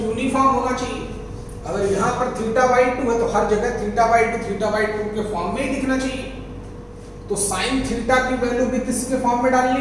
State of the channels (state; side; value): identical; both; correlation 1.00